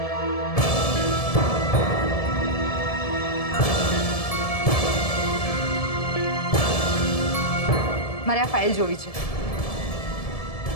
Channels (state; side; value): late; right; 1.7 ms